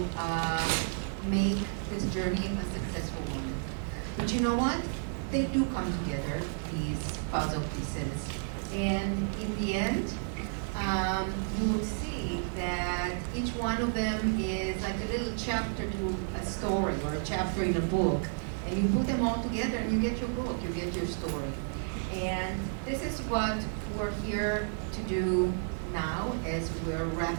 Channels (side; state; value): left; silent; 55 dB below the other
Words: make this journey a successful one. But you know what? They do come together, these puzzle pieces. And in the end, you will see that each one of them is like a little chapter to a story or a chapter in a book. And you put them all together and you get your book, you get your story. And this is what we're here to do now as we're